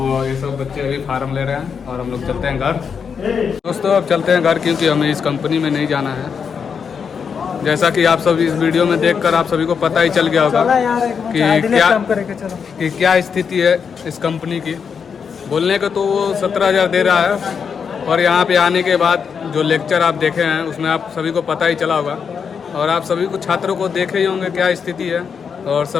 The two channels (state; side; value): quieter; right; 6.4 dB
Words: ये सब बच्चे अभी फार्म ले रहे हैं और हम लोग चलते हैं घर। दोस्तों अब चलते हैं घर क्योंकि हमें इस कंपनी में नहीं जाना है। जैसा कि आप सब इस वीडियो में देखकर आप सभी को पता ही चल गया होगा कि क्या स्थिति है इस कंपनी की। बोलने को तो वो 17,000 दे रहा है और यहाँ पे आने के बाद जो लेक्चर आप देखे हैं उसमें आप सभी को पता ही चला होगा और आप सभी को छात्रों को देखे ही होंगे क्या स्थिति है और